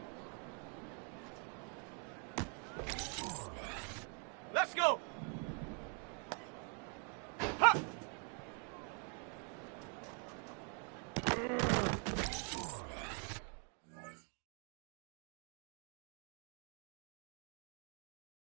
Let's go! Ha!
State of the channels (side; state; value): left; quieter; 39.5 dB